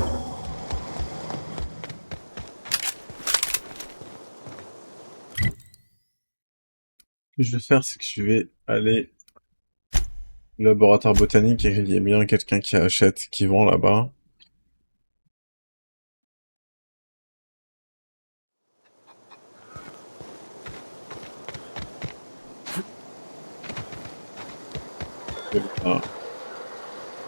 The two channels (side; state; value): both; inverted; correlation -1.00